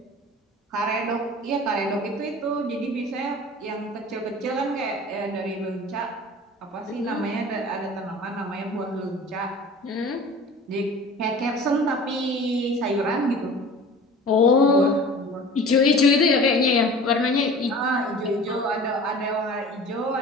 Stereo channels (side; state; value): both; normal; correlation 0.41